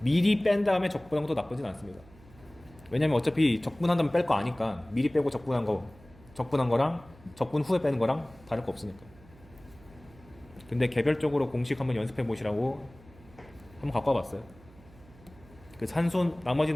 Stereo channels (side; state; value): right; noise; hum, 24 dB below the sound